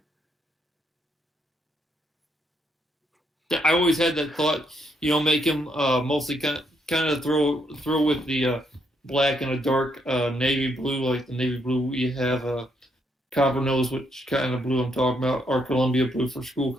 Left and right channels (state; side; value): normal; both; correlation 0.75